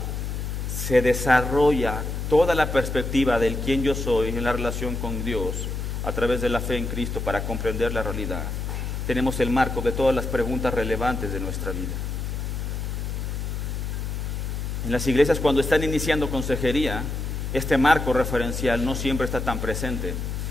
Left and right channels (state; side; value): noise; left; hum, 3 dB below the sound